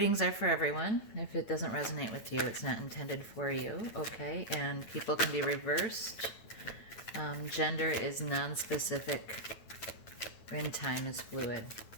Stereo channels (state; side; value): late; right; 8.9 ms